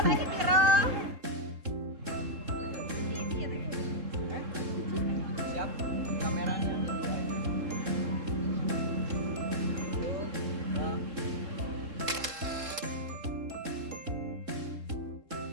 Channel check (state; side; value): late; left; 3.7 ms